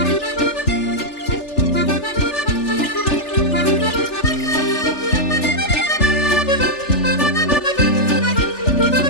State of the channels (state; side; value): late; right; 3.4 ms